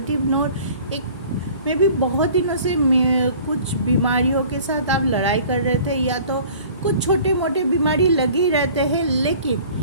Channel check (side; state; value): both; inverted; correlation -0.48